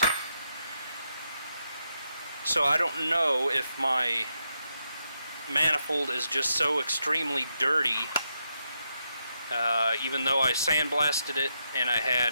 So I don't know if my manifold is just so extremely dirty, even though I sandblasted it and I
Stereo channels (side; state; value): both; inverted; correlation -0.82